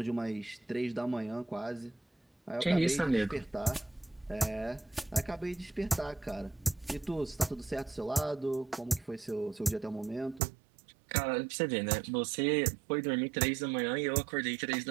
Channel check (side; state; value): left; drops out; at 10.4 s